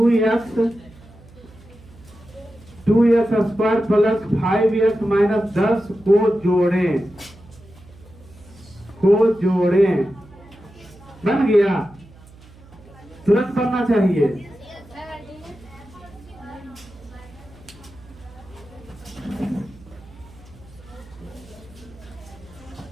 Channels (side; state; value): right; noise; hum, 23 dB below the sound